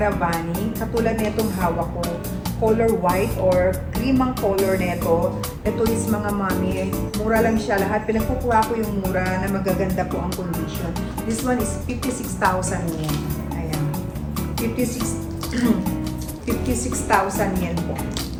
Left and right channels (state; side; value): identical; both; correlation 1.00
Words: Katulad nitong hawak ko, color white or cream ang color nito. Ito is mga mami, mura lang siya lahat. Pinagkukuha ko yung mura na magaganda po ang condition. This one is 56,000 yen. Ayan. 56,000 yen po.